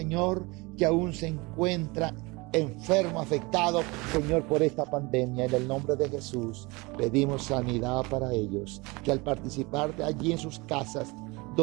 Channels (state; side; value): quieter; left; 25.1 dB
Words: que aún se encuentra enfermo, afectado, Señor, por esta pandemia. En el nombre de Jesús pedimos sanidad para ellos, que al participar de allí en sus casas